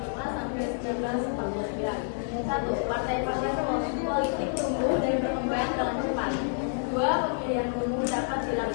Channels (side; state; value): right; silent; digital silence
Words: sampai 1949. 1. Partai-partai politik tumbuh dan berkembang dengan cepat. 2. Pemilihan umum dapat